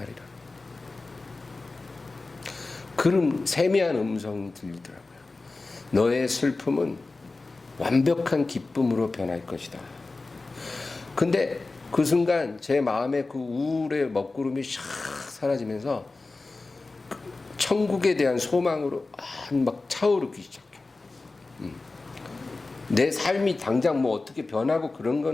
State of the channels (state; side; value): quieter; right; 3.5 dB